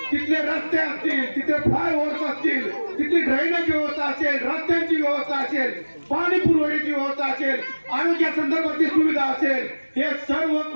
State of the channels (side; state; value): both; inverted; correlation -1.00